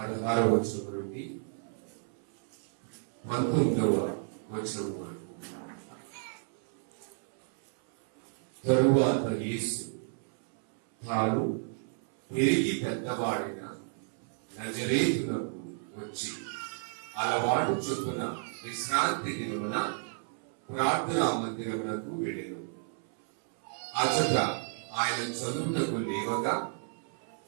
వచనం నుండి 19వ వచనం వరకు. తరువాత యేసు తాను పెరిగి పెద్దవాడైన నజరేతునకు వచ్చి అలవాటు చొప్పున విశ్రాంతి దినమున ప్రార్థనా మందిరమునకు వెళ్ళెను. అచట ఆయన చదువుటకు లేవగా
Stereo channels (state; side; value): silent; left; 57 dB below the other